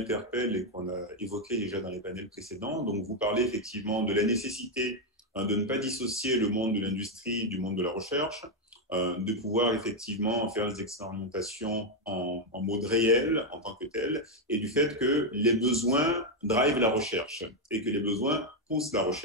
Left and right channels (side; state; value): both; normal; correlation 0.03